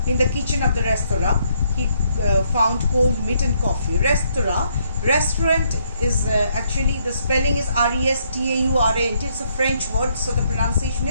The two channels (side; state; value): both; inverted; correlation -0.72